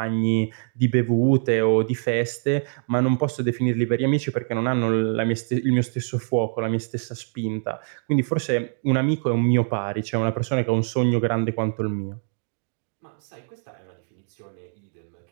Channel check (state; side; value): silent; left; 58 dB below the other